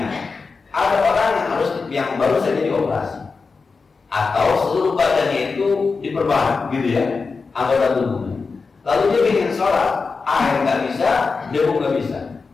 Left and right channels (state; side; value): quieter; right; 4.6 dB